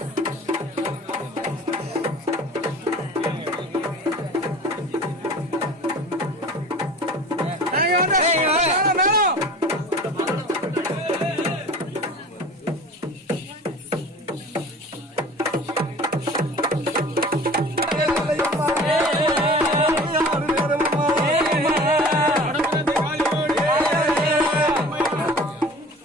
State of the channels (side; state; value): both; normal; correlation 0.42